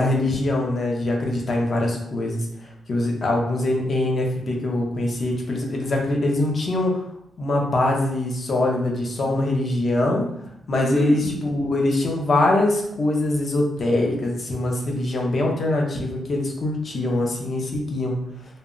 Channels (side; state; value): both; normal; correlation 0.82